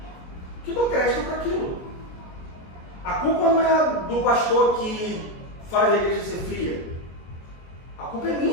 que dou crédito para aquilo. A culpa não é do pastor que faz a igreja ser fria. A culpa é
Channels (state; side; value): late; right; 23 ms